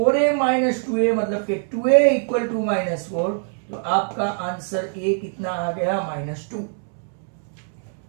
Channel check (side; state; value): left; silent; digital silence